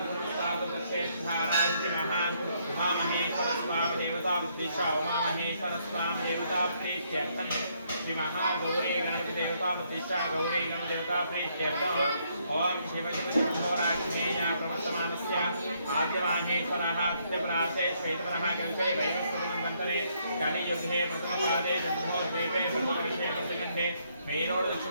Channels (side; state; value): both; inverted; correlation -0.72